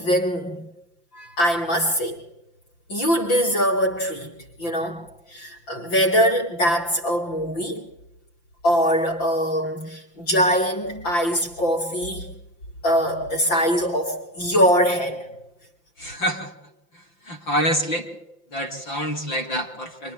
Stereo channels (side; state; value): right; late; 5.8 ms